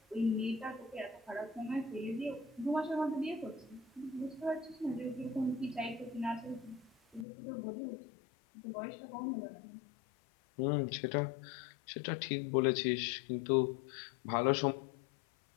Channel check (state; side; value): drops out; right; at 7.2 s